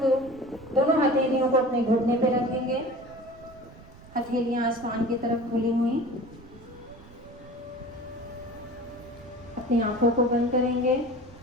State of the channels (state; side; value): noise; right; rumble, 21 dB below the sound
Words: को अपने घुटने पे रखेंगे, हथेलियां आसमान की तरफ खुली हुई। अपनी आंखों को बंद करेंगे।